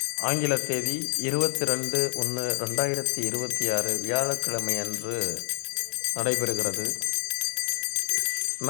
ஆங்கில தேதி 22/1/2026 வியாழக்கிழமை அன்று நடைபெறுகிறது.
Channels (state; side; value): silent; right; digital silence